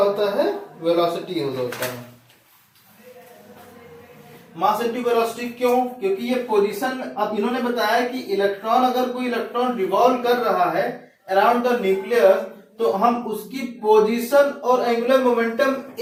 है? वेलोसिटी होता है। मास इनटू वेलोसिटी क्यों? क्योंकि ये पोजीशन, अब इन्होंने बताया कि इलेक्ट्रॉन, अगर कोई इलेक्ट्रॉन रिवॉल्व कर रहा है अराउंड द न्यूक्लियस, तो हम उसकी पोजीशन और एंगुलर मोमेंटम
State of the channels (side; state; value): both; identical; correlation 1.00